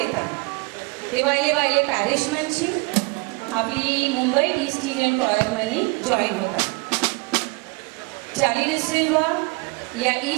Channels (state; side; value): quieter; left; 29.3 dB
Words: ते वायले वायले पॅरिश मनशी आपली मुंबई ईस्ट इंडियन कॉयर मनी जॉईन होता. चाली डिसिल्वा या